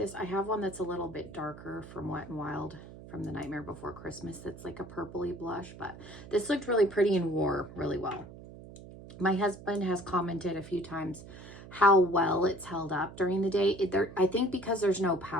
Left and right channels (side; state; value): right; noise; hum, 16 dB below the sound